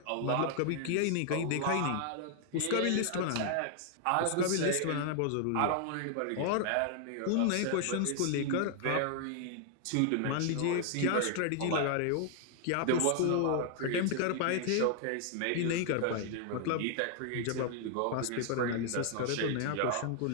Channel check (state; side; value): different; both; correlation 0.00